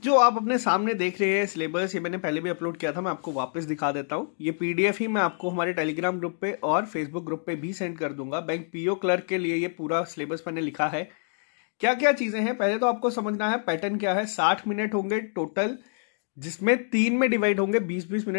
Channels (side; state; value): right; silent; digital silence